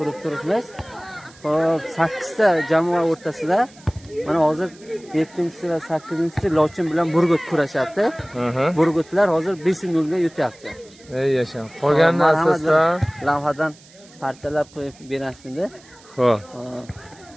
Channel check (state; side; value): noise; right; hiss, 25 dB below the sound